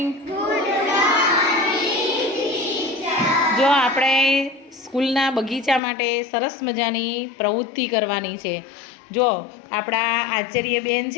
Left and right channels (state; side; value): drops out; right; at 5.8 s